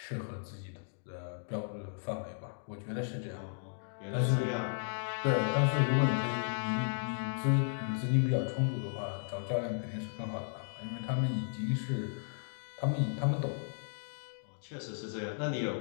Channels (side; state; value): right; silent; digital silence